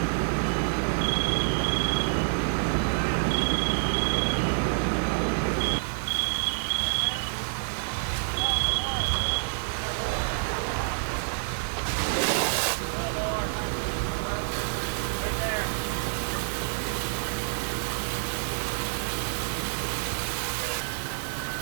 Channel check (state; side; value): silent; left; digital silence